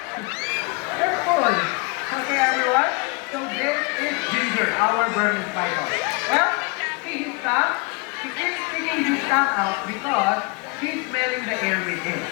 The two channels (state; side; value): quieter; right; 29.9 dB